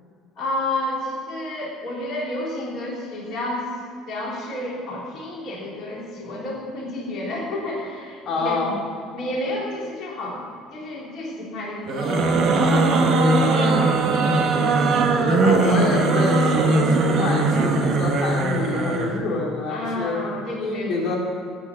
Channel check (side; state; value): both; normal; correlation 0.55